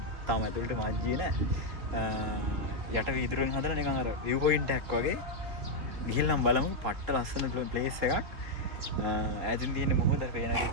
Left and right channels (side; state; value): left; late; 3.5 ms